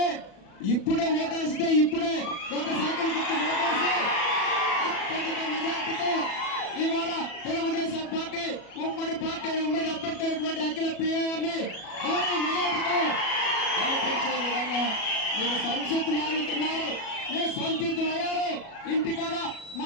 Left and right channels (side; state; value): right; late; 37 ms